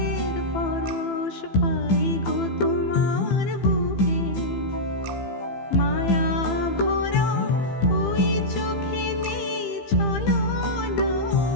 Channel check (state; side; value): late; right; 15 ms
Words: পরশ পাই গো তোমার বুকে মায়া ভরা ওই চোখে নেই ছলনা